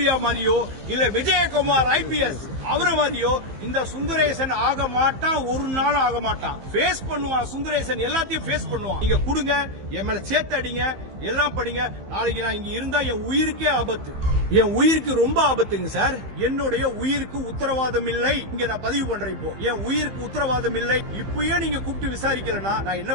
மாதிரியோ இல்ல விஜயகுமார் IPS அவரை மாதிரியோ இந்த சுந்தரேசன் ஆக மாட்டான், ஒரு நாள் ஆக மாட்டான். ஃபேஸ் பண்ணுவான் சுந்தரேசன், எல்லாத்தையும் ஃபேஸ் பண்ணுவான். நீங்க கொடுங்க, என் மேல சேர்த்து அடிங்க, எல்லாம் படிங்க. நாளைக்கு நான் இங்க இருந்தா என் உயிருக்கே ஆபத்து, என் உயிருக்கு ரொம்ப ஆபத்துங்க சார். என்னுடைய உயிருக்கு உத்தரவாதம் இல்லை. இங்க நான் பதிவு பண்றேன். இப்போ என் உயிருக்கு உத்தரவாதம் இல்லை. இப்பயே நீங்க கூப்பிட்டு விசாரிக்கலனா நான் என்ன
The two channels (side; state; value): left; late; 15 ms